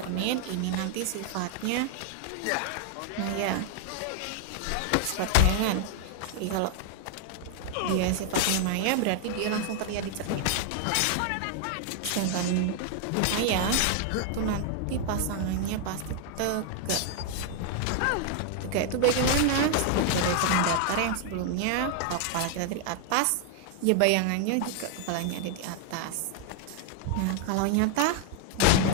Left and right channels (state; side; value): different; both; correlation 0.00